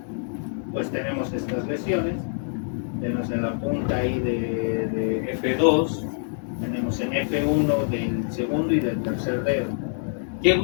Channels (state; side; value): silent; right; digital silence